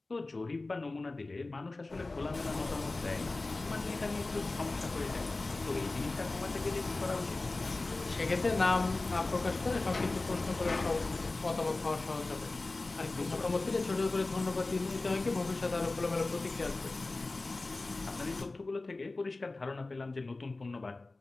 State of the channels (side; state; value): right; quieter; 3.2 dB